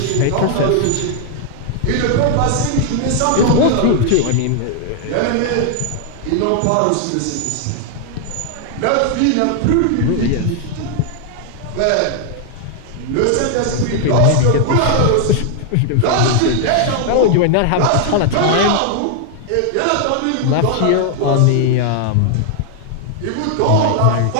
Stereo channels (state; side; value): different; both; correlation 0.00